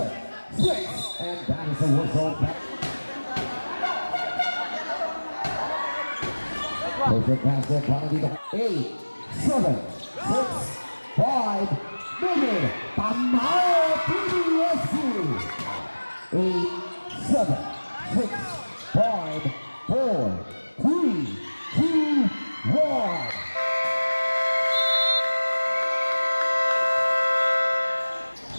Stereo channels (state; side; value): inverted; both; correlation -1.00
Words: 6. And that is a whistle back. Perfect basket. Para dito. 8. 7. 6. 5. Mingin. Tamayo. PDSC. 8. 7. 6. 5, 4, 3, 2, 1.